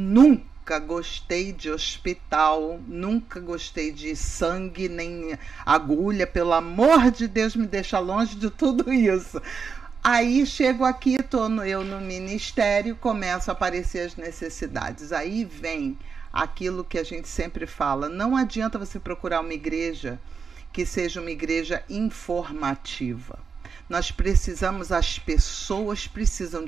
gostei de hospital, nunca gostei de sangue, nem agulha, pelo amor de Deus, me deixa longe de tudo isso. Aí chego aqui, eu no ministério, começam a aparecer as necessidades. Aí vem aquilo que a gente sempre fala, não adianta você procurar uma igreja que seja uma igreja informativa. Nós precisamos, as pessoas precisam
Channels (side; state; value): left; quieter; 5.7 dB